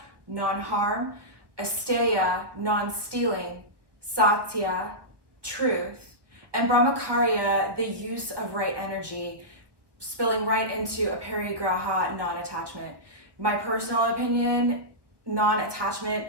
non-harm, asteya, non-stealing, satya, truth, and brahmacharya, the use of right energy, spilling right into Aparigraha, non-attachment. My personal opinion, non-attachment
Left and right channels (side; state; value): left; late; 1.4 ms